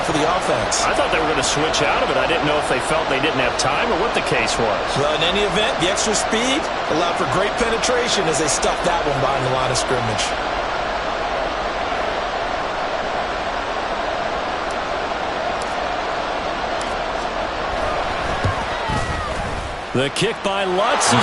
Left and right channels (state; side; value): identical; both; correlation 1.00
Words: for the offense. I thought they were going to switch out of it. I didn't know if they felt they didn't have time or what the case was. Well, in any event, the extra speed allowed for great penetration as they stuffed that one behind the line of scrimmage. The kick by Lutz